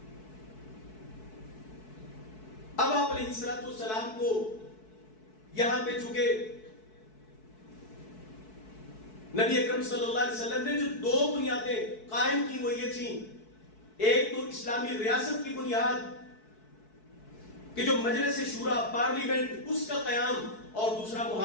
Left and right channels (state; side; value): late; right; 4.6 ms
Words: اب آپ علیہ السلام کو یہاں پہ چونکہ نبی اکرم صلی اللہ علیہ وسلم نے جو 2 بنیادیں قائم کی وہ یہ تھیں، ایک تو اسلامی ریاست کی بنیاد کہ جو مجلس شورا، پارلیمنٹ، اس کا قیام، اور دوسرا